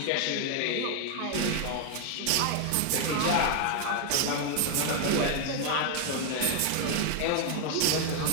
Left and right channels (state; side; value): different; both; correlation 0.00